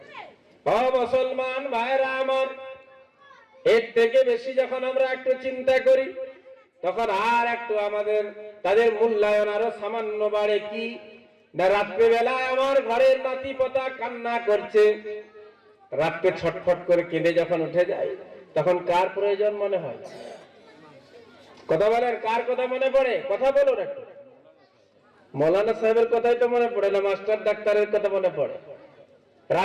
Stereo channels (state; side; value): identical; both; correlation 1.00